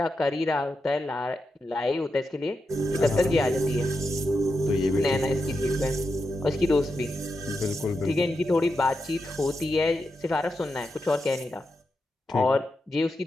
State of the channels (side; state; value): both; normal; correlation 0.87